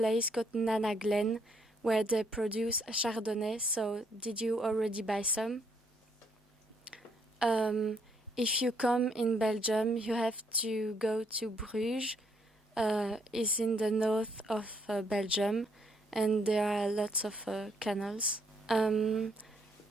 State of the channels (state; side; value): normal; both; correlation 0.70